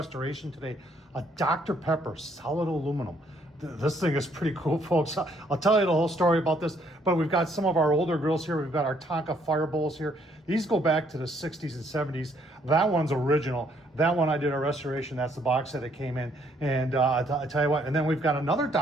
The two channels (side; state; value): both; normal; correlation 0.67